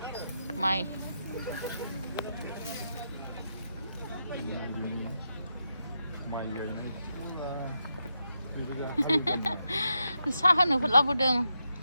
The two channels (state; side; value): inverted; both; correlation -0.84